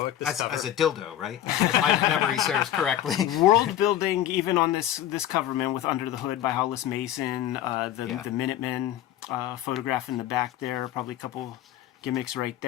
This cover as a dildo, right? If my memory serves correctly. World building, even on this cover, man, with Under the Hood by Hollis Mason, the Minutemen photograph in the back there, probably a couple gimmicks right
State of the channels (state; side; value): quieter; right; 11.9 dB